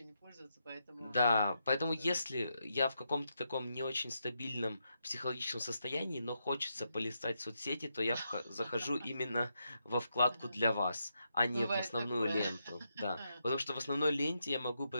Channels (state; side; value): inverted; both; correlation -0.83